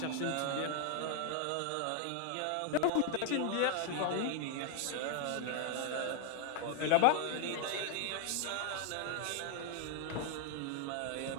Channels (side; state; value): both; different; correlation 0.00